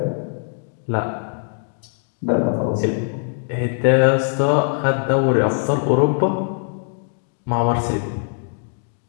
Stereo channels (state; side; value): silent; right; digital silence